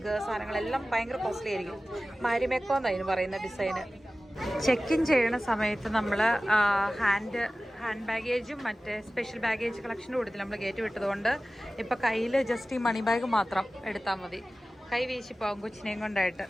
സാധനങ്ങളെല്ലാം ഭയങ്കര കോസ്റ്റ്ലി ആയിരിക്കും. മാരിമെക്കോ എന്നായിരുന്നു പറയുന്ന ഡിസൈന്. ചെക്ക് ഇൻ ചെയ്യുന്ന സമയത്ത് നമ്മൾ ഹാൻഡ് ബാഗേജും മറ്റേ സ്പെഷ്യൽ ബാഗേജ് കളക്ഷൻ്റെ കൂട്ടത്തിൽ നമ്മൾ കയറ്റി വിട്ടതുകൊണ്ട് ഇപ്പം കയ്യിൽ ജസ്റ്റ് ഈ മണി ബാഗ് മാത്രം എടുത്താൽ മതി. കൈ വീശിപ്പോകും കൊച്ചിനെയും കൊണ്ടായിട്ട്.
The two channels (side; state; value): both; normal; correlation 0.96